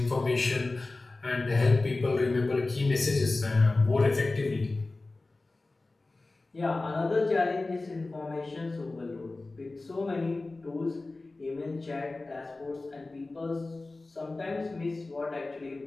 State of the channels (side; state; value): right; quieter; 3.2 dB